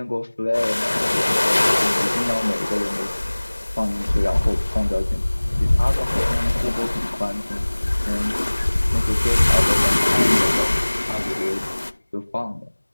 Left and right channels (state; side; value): inverted; both; correlation -1.00